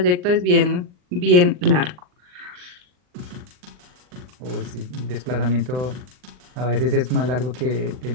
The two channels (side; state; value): left; late; 39 ms